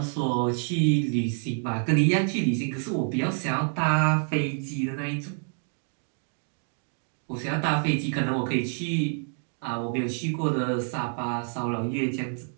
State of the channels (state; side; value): silent; left; 58 dB below the other